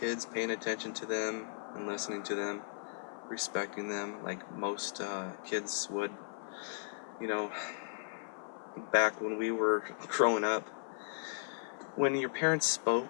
paying attention to them and listening to them, respecting them like most kids would. Back when we were growing up, when your parents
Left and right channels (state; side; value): silent; right; 54 dB below the other